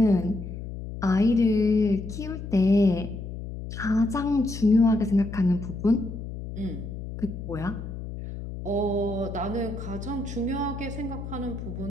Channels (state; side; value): noise; left; hum, 9 dB below the sound